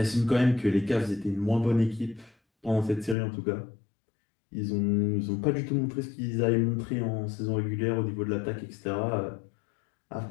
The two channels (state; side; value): drops out; right; at 3.2 s